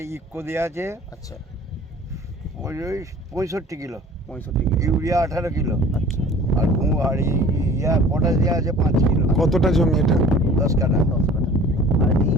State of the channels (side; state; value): both; normal; correlation 0.47